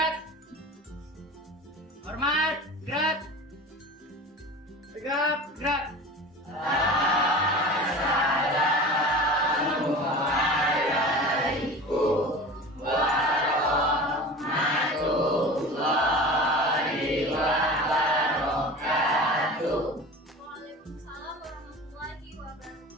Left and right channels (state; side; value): normal; both; correlation 0.35